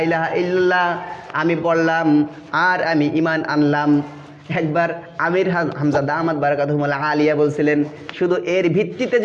ইলাহা ইল্লাল্লাহ আমি পড়লাম আর আমি ঈমান আনলাম। একবার আমির হামজা দামাত বারাকাতুহুমুল আলিয়া বলছিলেন, শুধু এর ভিত্তিতে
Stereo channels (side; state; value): both; identical; correlation 1.00